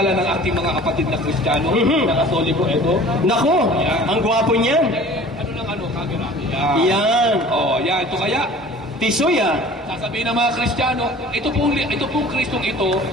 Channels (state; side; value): normal; both; correlation 0.45